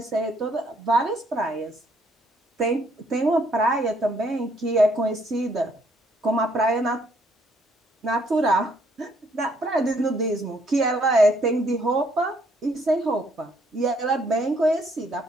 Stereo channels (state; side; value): normal; both; correlation 0.67